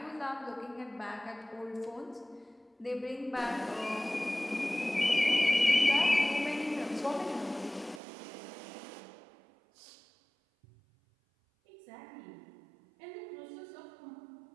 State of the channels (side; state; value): left; drops out; at 8.0 s